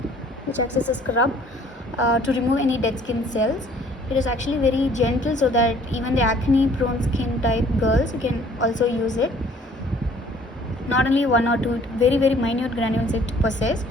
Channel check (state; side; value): normal; both; correlation 0.56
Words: to remove any dead skin cells. It is actually very gentle, so that even the acne prone skin type girls, you can also use it. Not only one or two, very minute granules it possesses,